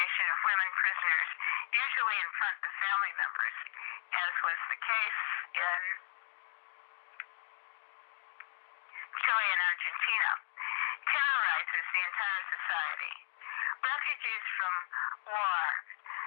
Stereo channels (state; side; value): silent; right; digital silence